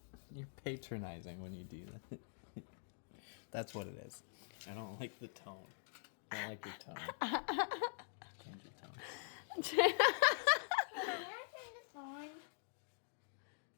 you're patronizing when you do that. That's what it is. I don't like the tone. I don't like your tone. Change your tone. Can I turn this on?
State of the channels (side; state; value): right; silent; digital silence